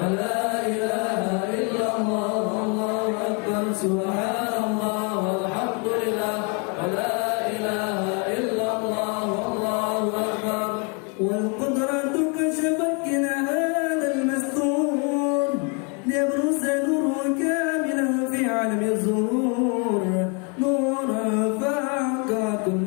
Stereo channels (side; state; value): right; quieter; 34.6 dB